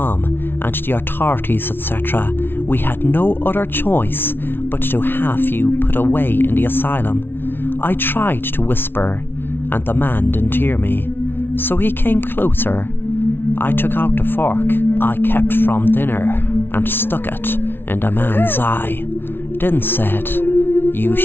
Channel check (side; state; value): right; late; 0.11 ms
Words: and the authorities, etc., we had no other choice but to have you put away in the asylum." I tried to whisper, and the man didn't hear me, so he came closer. I took out the fork I kept from dinner and stuck it in the man's eye, then said, "You